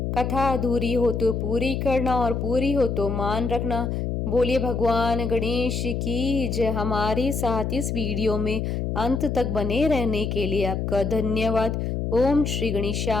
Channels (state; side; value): noise; left; hum, 1 dB below the sound